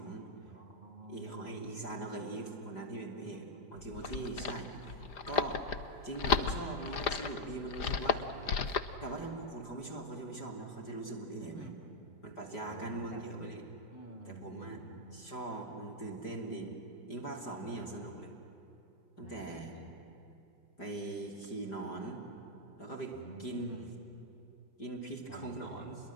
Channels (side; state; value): right; late; 5.0 ms